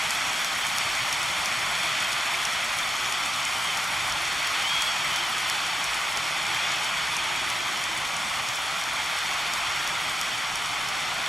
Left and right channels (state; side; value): normal; both; correlation 0.89